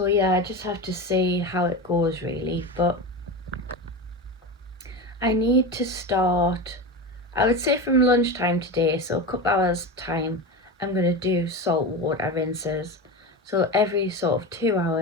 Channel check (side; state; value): both; normal; correlation 0.23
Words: yeah, I just have to see how it goes really, but I need to start, I would say from lunchtime today, so a couple hours time, I'm going to do salt water rinses. So every sort of 2